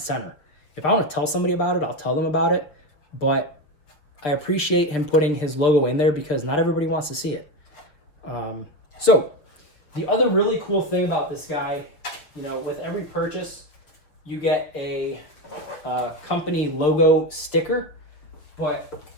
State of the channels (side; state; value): right; late; 6.4 ms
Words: If I want to tell somebody about it, I'll tell them about it. But I appreciate him putting his logo in there because not everybody wants to see it. So the other really cool thing about this guy, you know, with every purchase, you get a company logo sticker. But